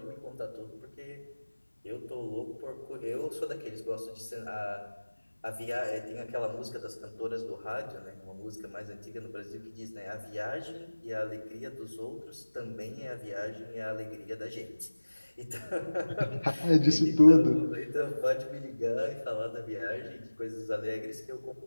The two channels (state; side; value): inverted; both; correlation -1.00